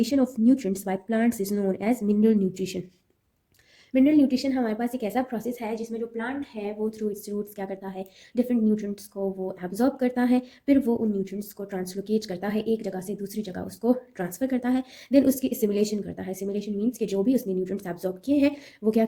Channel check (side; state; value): both; identical; correlation 1.00